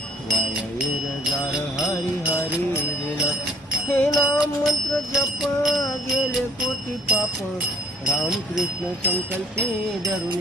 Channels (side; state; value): both; normal; correlation 0.59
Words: वायर जार हरी हरी विना हे नाम मंत्र जप गेले कोटी पाप रामकृष्ण संकल्पे